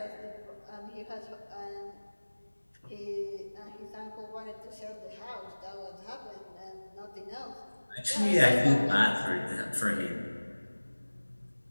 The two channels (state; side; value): inverted; both; correlation -1.00